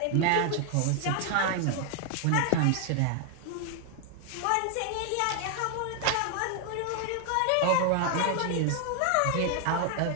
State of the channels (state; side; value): different; both; correlation 0.00